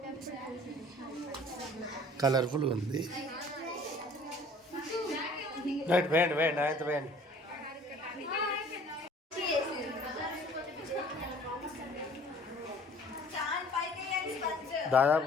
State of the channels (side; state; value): both; normal; correlation 0.52